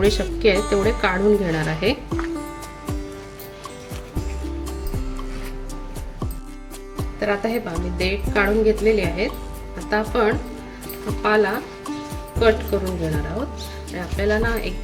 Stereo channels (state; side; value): identical; both; correlation 1.00